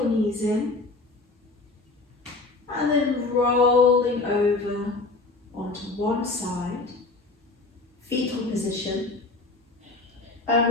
knees in. And then rolling over onto one side, fetal position. And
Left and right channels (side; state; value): right; quieter; 3.4 dB